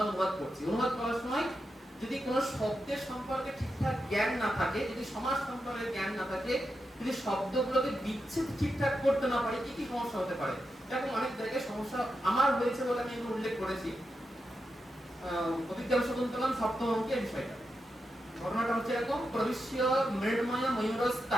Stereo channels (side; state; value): both; normal; correlation 0.87